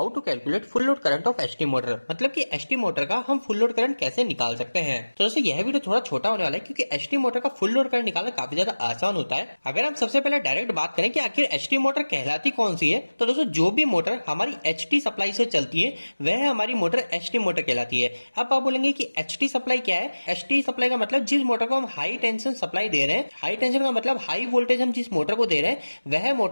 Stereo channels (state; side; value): inverted; both; correlation -1.00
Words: to calculate full load current of ST motor, मतलब कि एसटी मोटर का हम फुल लोड करंट कैसे निकाल सकते हैं। तो दोस्तों यह वीडियो थोड़ा छोटा होने वाला है क्योंकि एसटी मोटर का फुल लोड करंट निकालना काफी ज्यादा आसान होता है। अगर हम सबसे पहले डायरेक्ट बात करें कि आखिर एसटी मोटर कहलाती कौन सी है, तो दोस्तों जो भी मोटर हमारी एचटी सप्लाई से चलती है वह हमारी मोटर एसटी मोटर कहलाती है। अब आप बोलेंगे कि एचटी सप्लाई क्या है। एचटी सप्लाई का मतलब जिस मोटर को हम हाई टेंशन सप्लाई दे रहे हैं, हाई टेंशन का मतलब हाई वोल्टेज हम जिस मोटर को दे रहे हैं वह